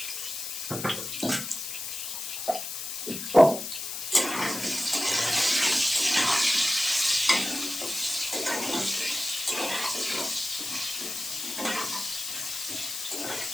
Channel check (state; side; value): noise; left; hiss, 6 dB below the sound